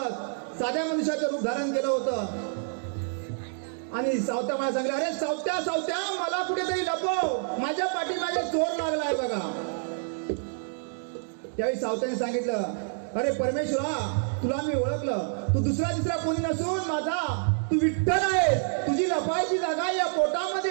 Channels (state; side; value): silent; left; digital silence